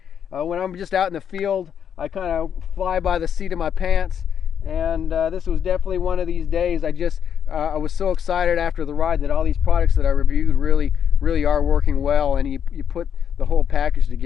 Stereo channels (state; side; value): quieter; right; 8.3 dB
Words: When I'm just out in the field, I kind of fly by the seat of my pants, and this was definitely one of these days. I was so excited after the ride that all these products that I reviewed really are working well, and you put the whole package